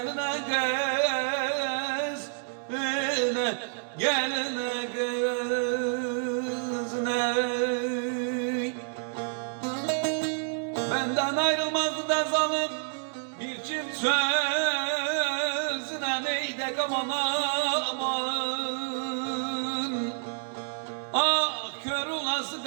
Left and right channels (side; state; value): left; silent; 59 dB below the other